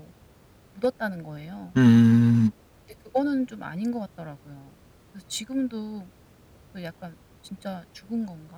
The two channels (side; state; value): both; identical; correlation 1.00